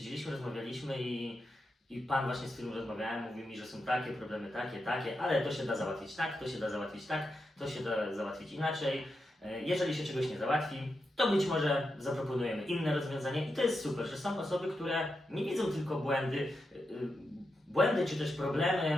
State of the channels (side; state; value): both; normal; correlation 0.87